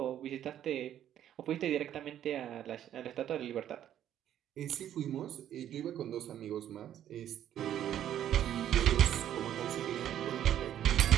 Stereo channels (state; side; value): quieter; left; 10.9 dB